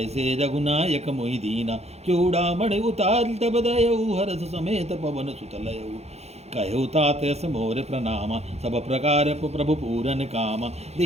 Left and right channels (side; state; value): left; late; 0.31 ms